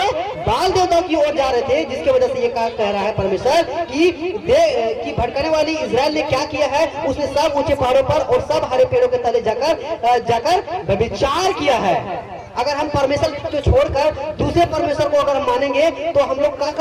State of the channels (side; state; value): both; identical; correlation 1.00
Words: बाल देवताओं की ओर जा रहे थे, जिसकी वजह से ये कह रहा है परमेश्वर कि भटकने वाली इजराइल ने क्या किया है? उसने सब ऊंचे पहाड़ों पर और सब हरे पेड़ों के तले जाकर व्यभिचार किया है। अगर हम परमेश्वर को छोड़कर दूसरे परमेश्वर को अगर हम मानेंगे तो हम लोग क्या